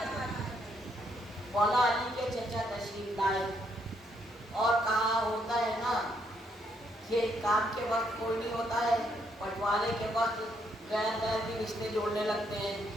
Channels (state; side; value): normal; both; correlation 0.73